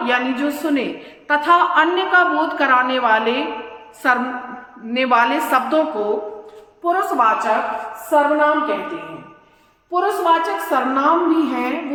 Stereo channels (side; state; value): both; identical; correlation 1.00